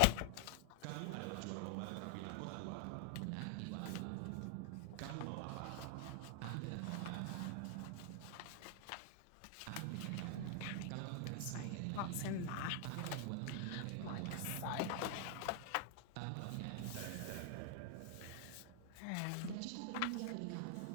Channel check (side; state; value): both; different; correlation 0.00